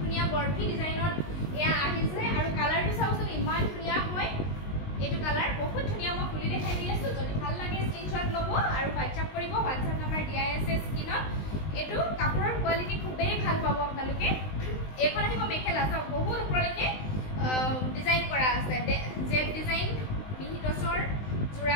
বৰফি ডিজাইনত এয়া আহিছে আৰু কালাৰটো চাওকচোন ইমান ধুনিয়া হয় এটো কালাৰ বহুত ধুনিয়া মই খুলি দেখাই দি আছো যদি ভাল লাগে স্ক্ৰিনশ্বট ল'ব আৰু WhatsApp কৰিব WhatsApp নম্বৰ দিয়াই আছে স্ক্ৰিনত এটো কাপোৰৰ কোৱালিটি খুবেই ভাল পাব আপোনালোকে এখন আহিব মেখেলা চাওক বহুত ওপৰলৈকে ডিজাইন কৰা আছে জেড ডিজাইন মিহি টছৰ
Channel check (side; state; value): right; late; 19 ms